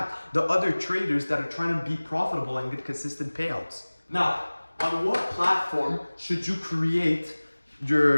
the other traders that are trying to be profitable and get consistent payouts. Now, on what platform should you create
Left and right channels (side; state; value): both; inverted; correlation -1.00